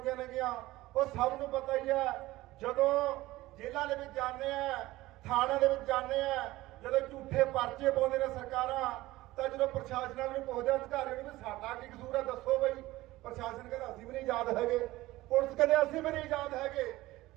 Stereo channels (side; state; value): left; quieter; 17.9 dB